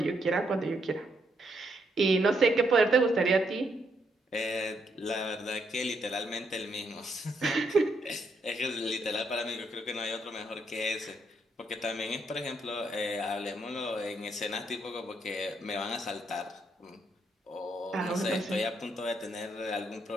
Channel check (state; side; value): normal; both; correlation 0.75